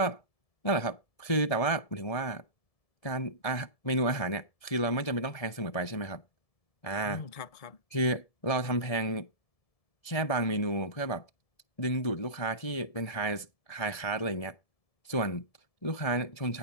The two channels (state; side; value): late; right; 1.7 ms